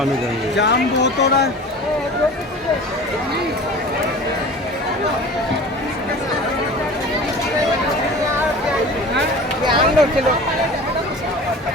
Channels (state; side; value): normal; both; correlation 0.38